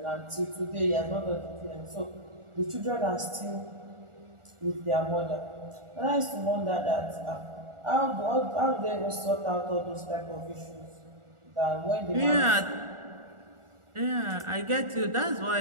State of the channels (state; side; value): late; left; 1.4 ms